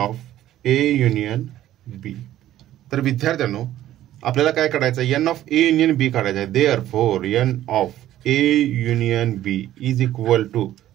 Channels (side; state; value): left; quieter; 13.2 dB